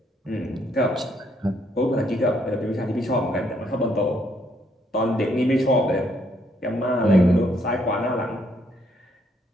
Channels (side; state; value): both; normal; correlation 0.71